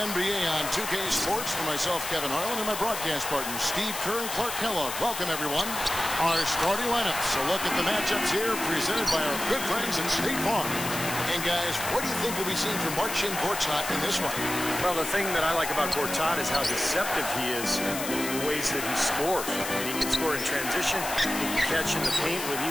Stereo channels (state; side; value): noise; left; hiss, 6 dB below the sound